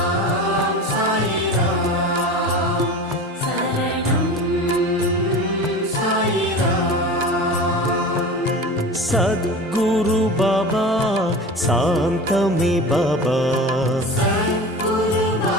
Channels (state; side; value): normal; both; correlation 0.33